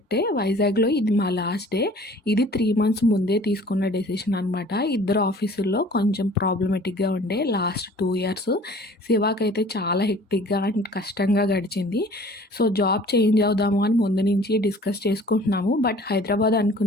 వైజాగ్లో ఇది మా లాస్ట్ డే. ఇది 3 months ముందే తీసుకున్న డెసిషన్ అనమాట. ఇద్దరు ఆఫీసుల్లో కొంచెం ప్రాబ్లమేటిక్గా ఉండే లాస్ట్ 2 years. శివాకైతే చాలా హెక్టిక్గా అండ్ కష్టంగా గడిచింది. సో జాబ్ చేంజ్ అవుదాము అని ముందు నుంచి డిస్కస్ చేసుకుంటున్నాము. బట్ హైదరాబాద్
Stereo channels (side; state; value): both; normal; correlation 0.49